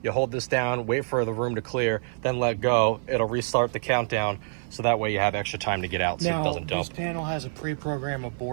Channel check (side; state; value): left; silent; 56 dB below the other